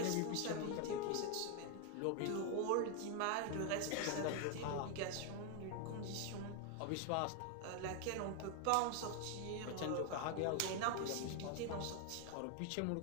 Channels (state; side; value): different; both; correlation 0.01